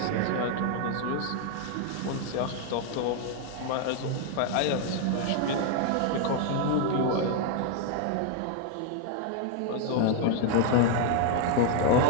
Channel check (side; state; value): both; different; correlation 0.00